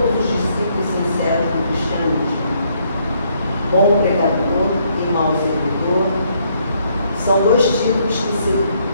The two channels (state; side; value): inverted; both; correlation -0.70